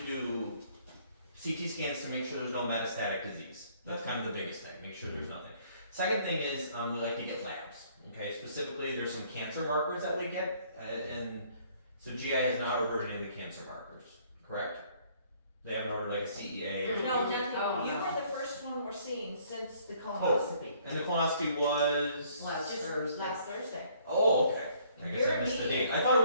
do CT scans to make sure there's no metastatic disease. That's kind of the biggest thing. Make sure there's nothing. Second thing is we like to get labs. Okay. Specifically, there's some cancer markers that we get, and so GI has not ordered any of the cancer markers, correct? They haven't ordered like a CEA or No, something. Matthew, you were the first one we're seeing since the colonoscopy. And the colonoscopy was Last Just Thursday. last Thursday. Oh, okay. I guess I missed the date. I thought it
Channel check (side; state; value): both; inverted; correlation -0.62